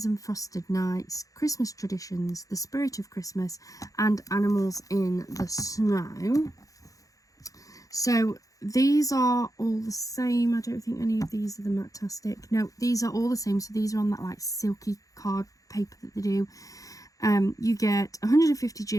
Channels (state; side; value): late; right; 0.17 ms